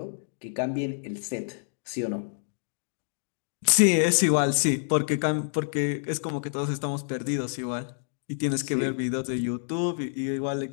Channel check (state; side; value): silent; right; digital silence